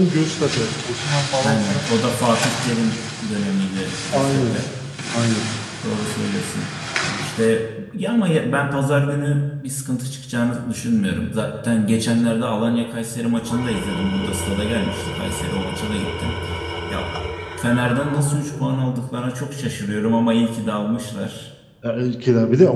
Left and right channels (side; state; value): both; identical; correlation 1.00